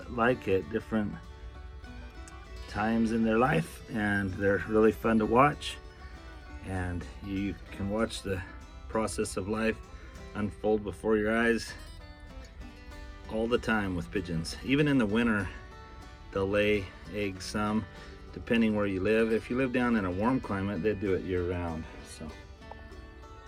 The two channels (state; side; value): identical; both; correlation 1.00